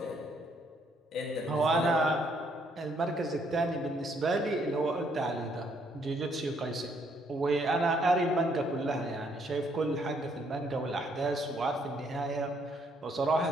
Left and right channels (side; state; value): both; normal; correlation 0.69